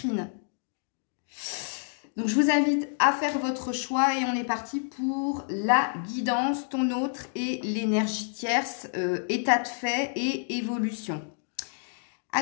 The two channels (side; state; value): right; silent; digital silence